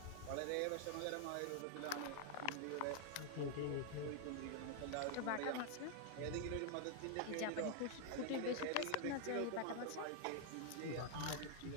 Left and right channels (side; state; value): both; different; correlation 0.00